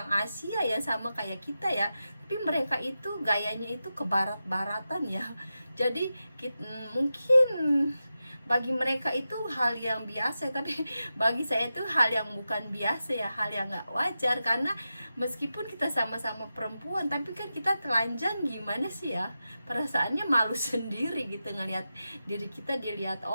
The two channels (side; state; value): both; inverted; correlation -0.91